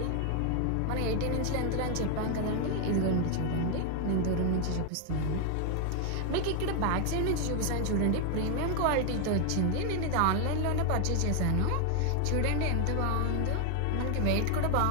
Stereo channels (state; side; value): different; both; correlation 0.00